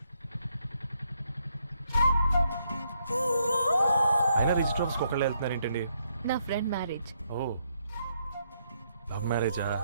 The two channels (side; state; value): both; inverted; correlation -0.76